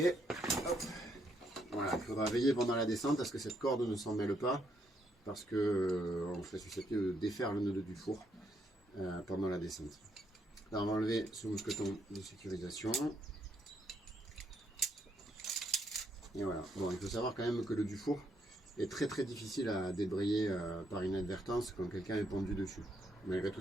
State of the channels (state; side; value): normal; both; correlation 0.75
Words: Hop. Voilà, il faudra veiller pendant la descente à ce que cette corde ne s'en mêle pas, parce qu'on serait susceptible de défaire le nœud du four pendant la descente. Là, on va enlever ce mousqueton de sécurisation. Et voilà. Bon, il faut savoir quand même que le dufour est très difficile à débrayer par inadvertance quand quelqu'un est pendu dessus. Malgré tout,